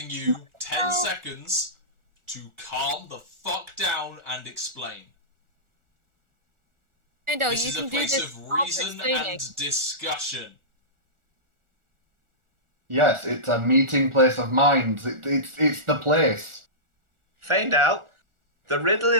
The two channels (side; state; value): left; late; 1.4 ms